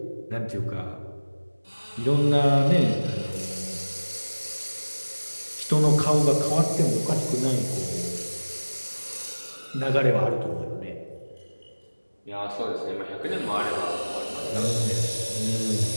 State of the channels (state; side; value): inverted; both; correlation -1.00